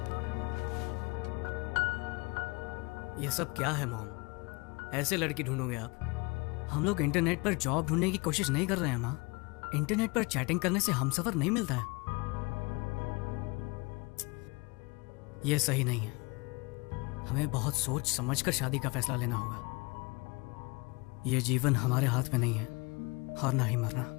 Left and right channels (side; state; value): right; quieter; 27.7 dB